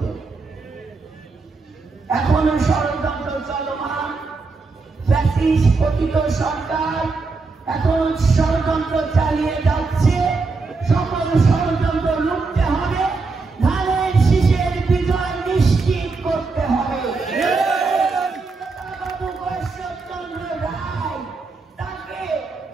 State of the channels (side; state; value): left; quieter; 4.1 dB